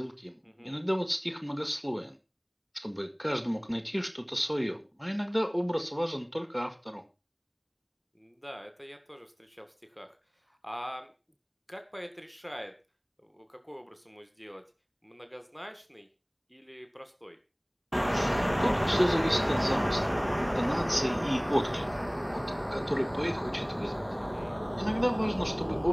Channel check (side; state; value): both; identical; correlation 1.00